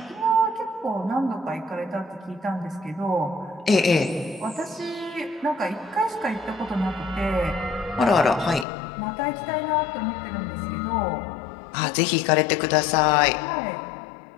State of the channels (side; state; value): right; drops out; at 8.7 s